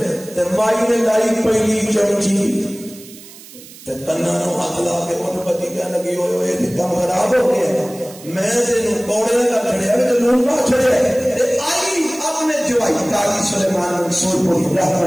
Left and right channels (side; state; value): right; noise; hiss, 19 dB below the sound